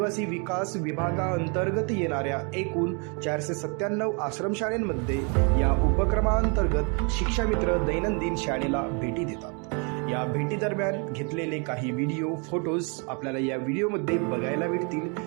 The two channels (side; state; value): left; quieter; 35.3 dB